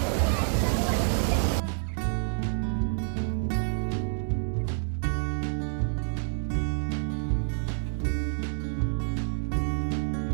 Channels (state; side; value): silent; left; digital silence